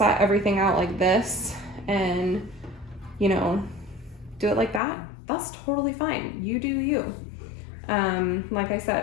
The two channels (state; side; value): drops out; right; at 4.8 s